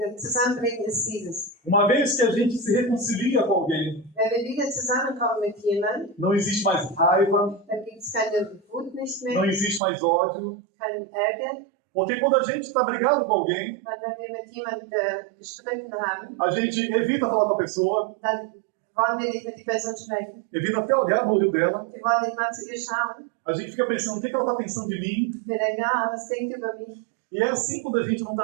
Zusammenbringen ist dieses? Uma vez que a gente se reconcilia com alguém, Wenn wir wieder zusammenkommen mit jemandem, não existe mais raiva, dann gibt es keine Wut nicht não mehr, existe mais ódio. keinen Ärger. Porque quando a gente está brigado com alguém, Weil wenn wir mit jemandem gestritten haben, a gente evita falar com a pessoa, dann wollen wir nicht mit der Person sprechen. evita até olhar no olho dela. Wir wollen nicht mal zu ihr schauen. A gente fica pensando, o que ela está pensando de mim? Wir denken, was denkt über mich? E é assim quando a gente não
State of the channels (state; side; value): drops out; left; at 9.8 s